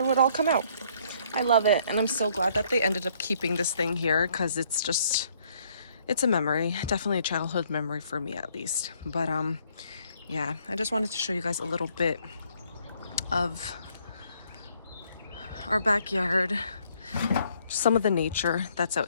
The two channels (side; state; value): both; inverted; correlation -0.65